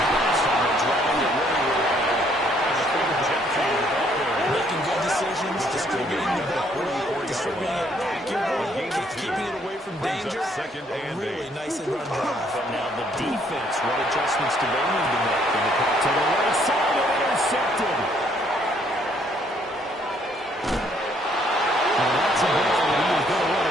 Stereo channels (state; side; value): normal; both; correlation 0.66